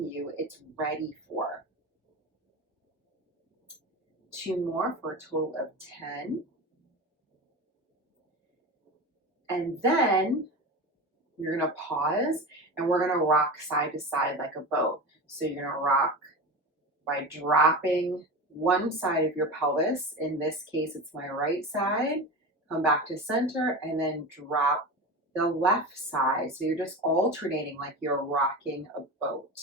you it's ready for. 2 more for a total of 10. And then you're going to pause and we're going to rock side to side like a boat. So you're going to rock by dropping one side of your pelvis. In this case, it's my right side. Come back to center and then drop the left side. So you're just alternating like you're rocking a boat.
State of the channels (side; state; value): both; normal; correlation 0.26